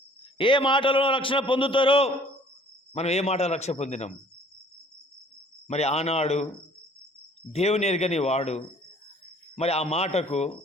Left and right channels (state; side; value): normal; both; correlation 0.54